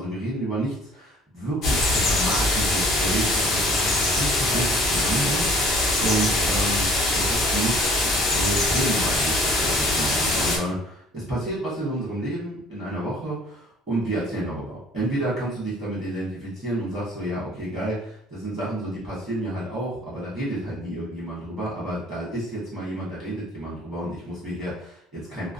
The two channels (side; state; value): both; normal; correlation 0.54